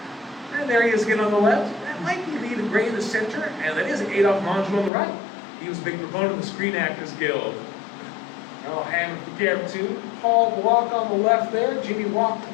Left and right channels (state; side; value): drops out; right; at 4.9 s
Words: And there he is again on the left. That might be Lee the Gray in the center, and that is Adolphe Menjou on the right. He was a big proponent of the Screen Actors Guild. Oh, hand with the camera too. Paul Block on the left there. Jimmy Walker